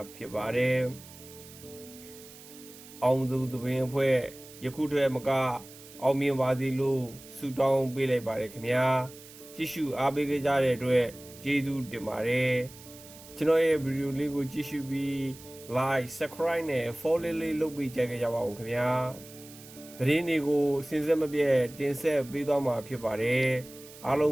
ဖြစ်ပါတယ်။အောင်စပူသပင်အဖွဲ့ယခုတည်းမကအောင်မြင်ပါစေလို့ဆုတောင်းပေးလိုက်ပါတယ်ခင်ဗျာ။ကြည့်ရှုအားပေးကြတဲ့အတွက်ကျေးဇူးတင်ပါတယ်။ကျွန်တော်ရဲ့ဗီဒီယိုလေးကိုကြည့်ရှုပြီး like subscribe နဲ့ follow လေးလုပ်ပေးကြပါအောင်ခင်ဗျာသတင်းတွေကိုစဉ်ဆက်မပြတ်တင်ဆက်ပေးသွားမှာဖြစ်ပါတယ်အားလုံ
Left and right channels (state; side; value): noise; right; hiss, 19 dB below the sound